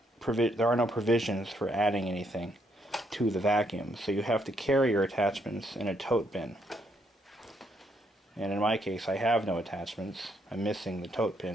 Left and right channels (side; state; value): both; normal; correlation 0.74